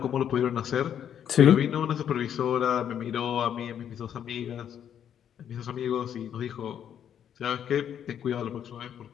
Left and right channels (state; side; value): quieter; right; 9.2 dB